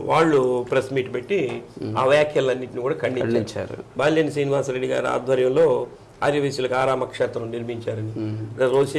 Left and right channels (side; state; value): both; identical; correlation 1.00